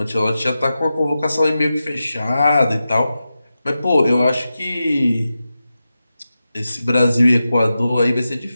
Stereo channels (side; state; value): both; inverted; correlation -0.92